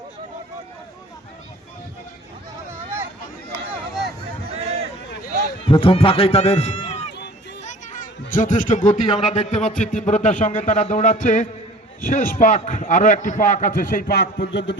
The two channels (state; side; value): normal; both; correlation 0.47